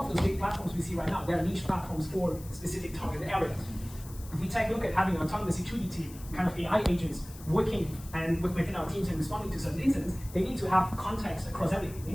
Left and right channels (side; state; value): left; noise; hiss, 18 dB below the sound